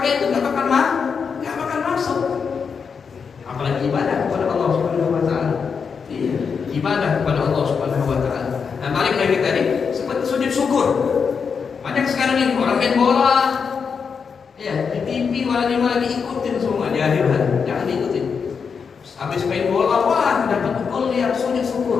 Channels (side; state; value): right; quieter; 6.0 dB